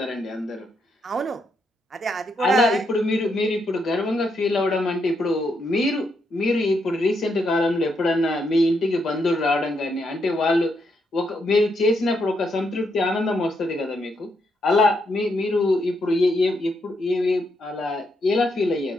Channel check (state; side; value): normal; both; correlation 0.79